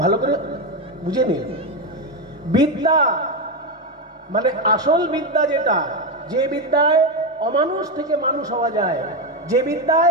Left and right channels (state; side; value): normal; both; correlation 0.10